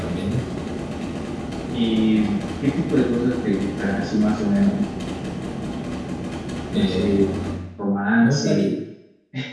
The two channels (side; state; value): both; identical; correlation 1.00